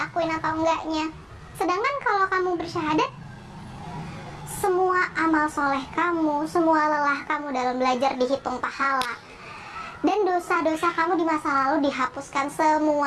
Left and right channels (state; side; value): identical; both; correlation 1.00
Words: atau enggaknya. Sedangkan kalau kamu bersyahadat, semua amal soleh kamu, semua lelah kamu dalam belajar dihitung pahala. Dan dosa-dosa kamu di masa lalu dihapuskan